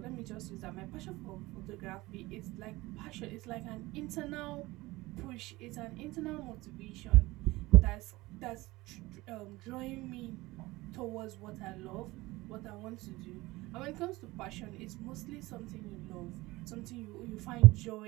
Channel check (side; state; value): left; quieter; 20.2 dB